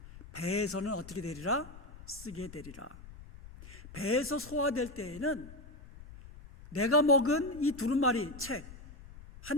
배에서는 어떻게 되리라? 쓰게 되리라. 배에서 소화될 때에는 내가 먹은 이 두루마리 책,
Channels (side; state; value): left; noise; rumble, 17 dB below the sound